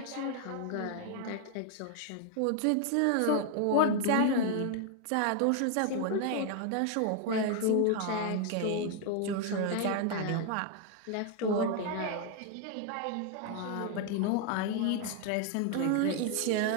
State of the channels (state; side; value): different; both; correlation 0.00